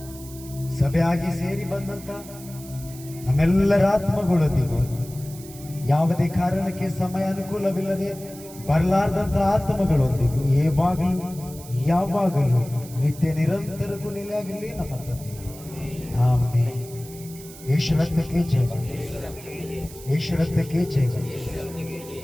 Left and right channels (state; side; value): noise; right; hiss, 17 dB below the sound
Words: ಸಭೆಯಾಗಿ ಸೇರಿ ಬಂದಂತ ನಮ್ಮೆಲ್ಲರ ಆತ್ಮಗಳೊಂದಿಗೂ ಯಾವುದೇ ಕಾರಣಕ್ಕೆ ಸಮಯ ಅನುಕೂಲವಿಲ್ಲದೆ ಬರಲಾರ್ದಂತ ಆತ್ಮಗಳೊಂದಿಗೂ ಯಾವಾಗಲೂ ನಿತ್ಯ ನಿರಂತರಕ್ಕೂ ನೆಲೆಯಾಗಿರಲಿ ನಮ್ಮ ತಂದೆ. ಆಮೆನ್. ಯೇಸು ರಕ್ತಕ್ಕೆ ಜಯ, ಯೇಸು ರಕ್ತಕ್ಕೆ ಜಯ,